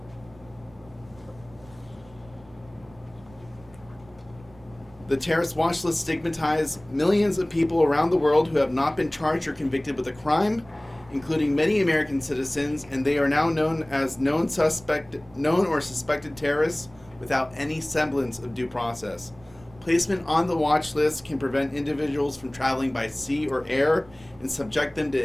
the terrorist watch list stigmatizes millions of people around the world who have not been charged or convicted with a crime, including many American citizens, and they are now known as known or suspected terrorists without any semblance of due process. Placement on the watch list can prevent individuals from traveling by sea or air and subject them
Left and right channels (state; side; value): noise; right; rumble, 25 dB below the sound